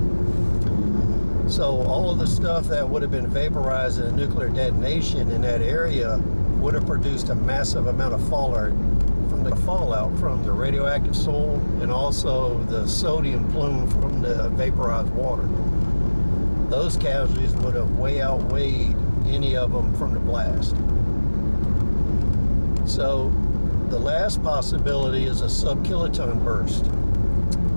So all of the stuff that would have been vaporized in a nuclear detonation in that area would have produced a massive amount of fallout from the radioactive soil and also the sodium plume from the vaporized water. Those casualties would have way outweighed any of them from the blast. So the last possibility is a sub-kiloton burst.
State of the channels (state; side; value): inverted; both; correlation -1.00